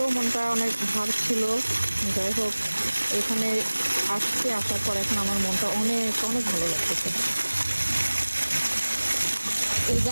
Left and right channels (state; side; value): inverted; both; correlation -1.00